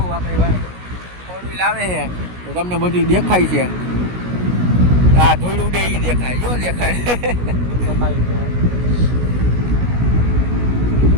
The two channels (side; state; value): left; late; 16 ms